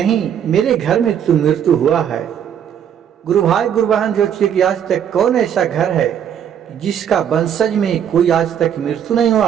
मेरे घर में तो मृत्यु हुआ है। गुरु भाई गुरु बहन, जो कि आज तक कौन ऐसा घर है जिसका वंशज में कोई आज तक मृत्यु नहीं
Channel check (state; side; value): quieter; left; 8.9 dB